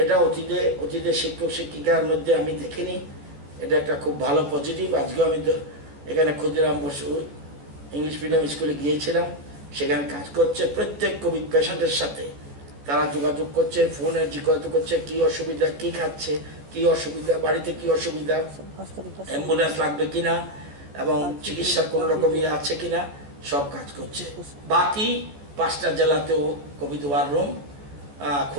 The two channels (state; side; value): late; left; 14 ms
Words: এটা অতীতে শিক্ষক শিক্ষিকার মধ্যে আমি দেখিনি। এটা একটা খুব ভালো পজিটিভ। আজকেও আমি এখানে ক্ষুদিরাম বসু ইংলিশ মিডিয়াম স্কুলে গিয়েছিলাম, সেখানে কাজ করছে। প্রত্যেক কোভিড পেশেন্টের সাথে তারা যোগাযোগ করছে, ফোনে জিজ্ঞাসা করছে কি অসুবিধা, কি খাচ্ছে, কি অসুবিধা, বাড়িতে কি অসুবিধা, অ্যাম্বুলেন্স লাগবে কিনা এবং চিকিৎসার কোনো রকম ইয়ে আছে কিনা, সব কাজ করছে। বাকি 5টা জেলাতেও কোভিড ওয়ার রুম